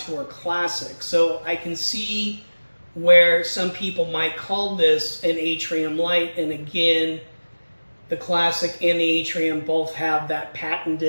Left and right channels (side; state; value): both; inverted; correlation -1.00